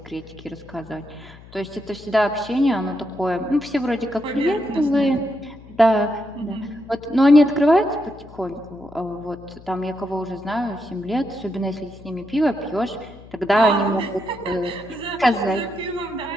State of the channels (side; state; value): left; noise; hum, 20 dB below the sound